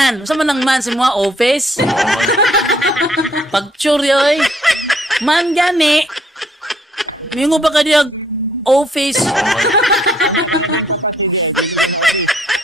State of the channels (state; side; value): normal; both; correlation 0.65